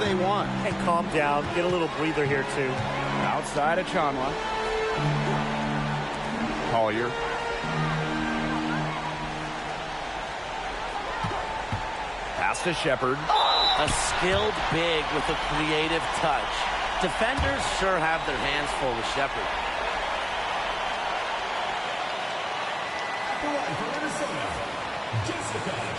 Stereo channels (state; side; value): identical; both; correlation 1.00